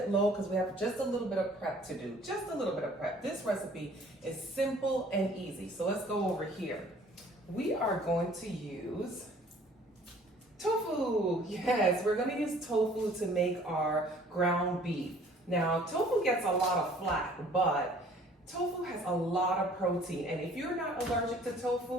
low because we have just a little bit of prep to do. Just a little bit of prep. This recipe is simple and easy. So let's go over here. We are going to use tofu. Yes, we're gonna use tofu to make our ground beef. Now, tofu gets a lot of flack, but tofu has a lot of protein, and if you're not allergic to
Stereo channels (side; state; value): both; normal; correlation 0.54